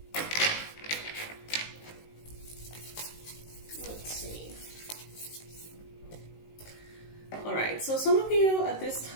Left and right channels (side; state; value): right; late; 19 ms